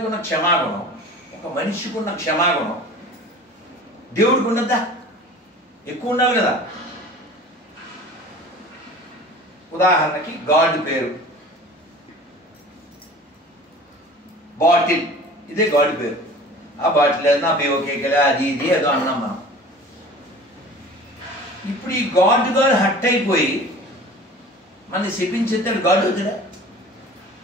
ఉన్న క్షమాగుణం, ఒక మనిషికి ఉన్న క్షమాగుణం దేవుడికి ఉన్నదా? ఎక్కువ ఉండాలి కదా. ఉదాహరణకి గాడ్ పేరు బాటిల్, ఇదే గాడ్ పేరు. ఆ బాటిల్ నా బేవకేకలే అది ఇది ఏదో అన్నాం మనం. ఇప్పుడు ఈ గాడ్ హట్ అయిపోయి మన శపించేస్తాడు. గాడ్ అవుతాడా?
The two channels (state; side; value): normal; both; correlation 0.42